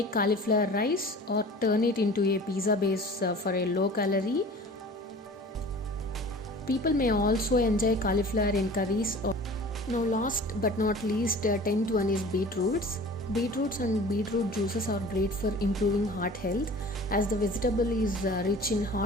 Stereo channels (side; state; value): both; normal; correlation 0.43